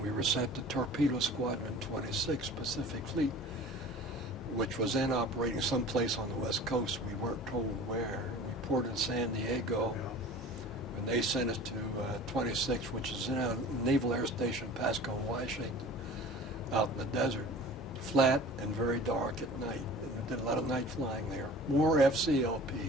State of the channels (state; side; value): normal; both; correlation 0.42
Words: we were sent to Torpedo Squadron 26 Pacific Fleet, which was then operating someplace on the West Coast. We weren't told where. We ported in San Diego, and they sent us to 26, which is in a Naval Air Station, Pasco, Washington, out in the desert, flat and very dark at night. And we did a lot of night flying there. More